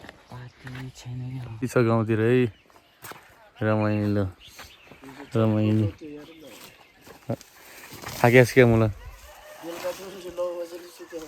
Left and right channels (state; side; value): identical; both; correlation 1.00